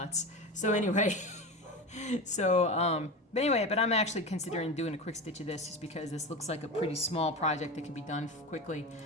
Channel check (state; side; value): normal; both; correlation 0.25